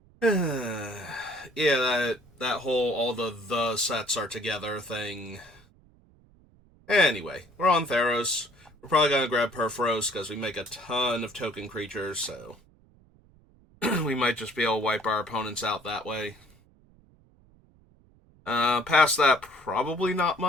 Yeah, that whole all the sets are together thing. Anyway, we're on Theros. We're probably gonna grab Perforos because we make a ton of token creatures, so we might just be able to wipe our opponents out that way. Past that, probably not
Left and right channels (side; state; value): right; noise; rumble, 29 dB below the sound